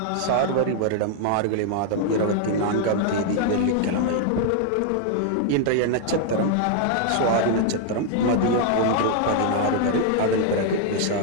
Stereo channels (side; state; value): both; different; correlation 0.00